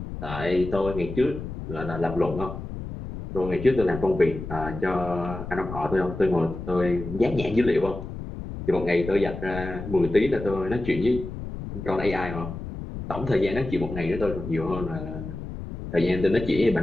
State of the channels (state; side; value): noise; left; rumble, 9 dB below the sound